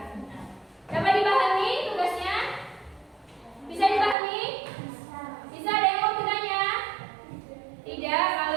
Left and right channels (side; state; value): left; drops out; at 4.2 s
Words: Dapat dipahami tugasnya? Bisa dipahami? Bisa, ada yang mau bertanya? Tidak,